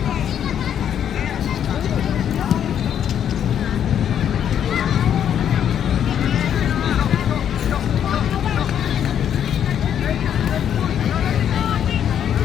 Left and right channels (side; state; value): right; quieter; 9.3 dB